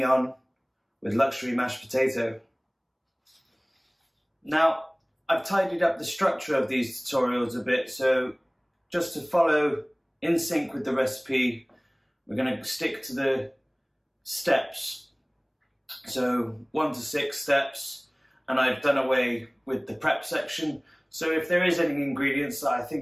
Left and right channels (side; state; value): both; identical; correlation 1.00